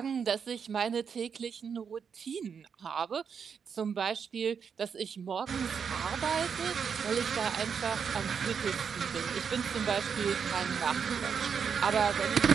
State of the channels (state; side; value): quieter; left; 6.7 dB